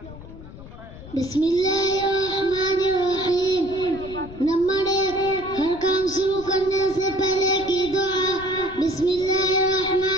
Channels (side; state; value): left; noise; rumble, 16 dB below the sound